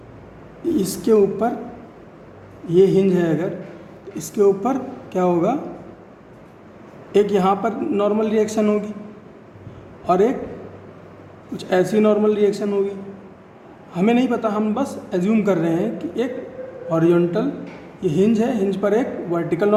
इसके ऊपर ये हिंज है, अगर तो इसके ऊपर क्या होगा, एक यहाँ पर नॉर्मल रिएक्शन होगी और एक कुछ ऐसी नॉर्मल रिएक्शन होगी। हमें नहीं पता, हम बस एज्यूम कर रहे हैं कि एक हॉरिजॉन्टल, ये हिंज है, हिंज पर एक वर्टिकल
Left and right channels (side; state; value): both; identical; correlation 1.00